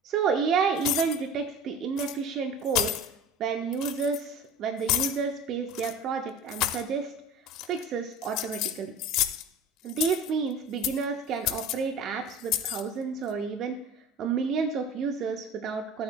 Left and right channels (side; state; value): both; normal; correlation 0.38